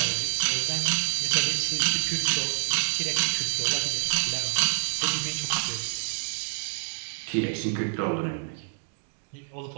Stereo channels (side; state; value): left; silent; digital silence